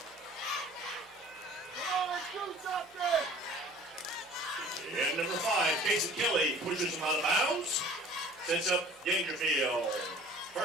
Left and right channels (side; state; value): both; normal; correlation 0.48